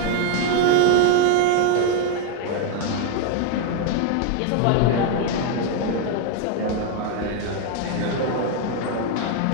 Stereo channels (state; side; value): different; both; correlation 0.00